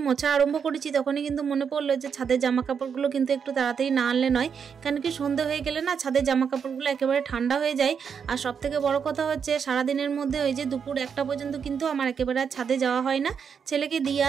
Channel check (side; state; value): left; quieter; 6.8 dB